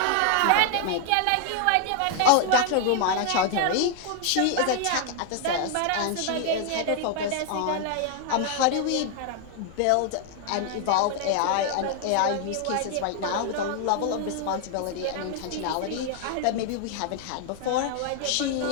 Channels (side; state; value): both; different; correlation 0.00